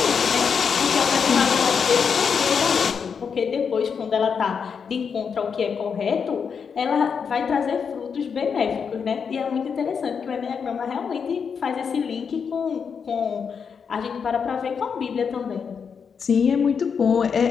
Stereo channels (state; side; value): quieter; right; 6.4 dB